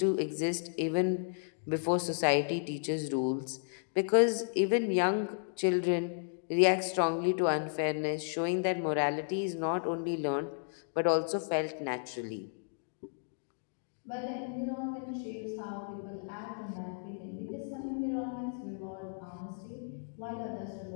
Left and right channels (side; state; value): right; silent; digital silence